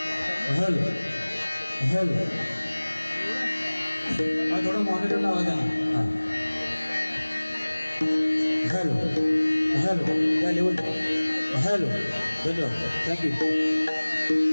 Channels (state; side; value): inverted; both; correlation -1.00